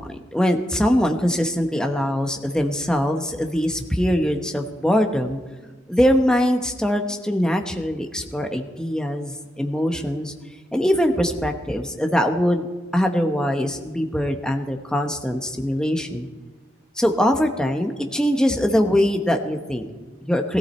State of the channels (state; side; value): normal; both; correlation 0.85